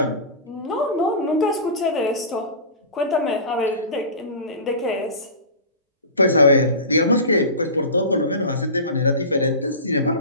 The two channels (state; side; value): inverted; both; correlation -0.31